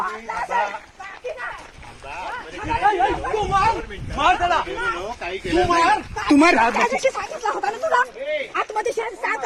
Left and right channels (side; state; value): both; identical; correlation 1.00